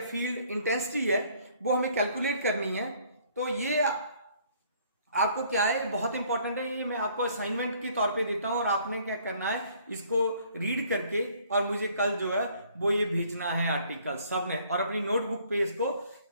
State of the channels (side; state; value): both; inverted; correlation -0.60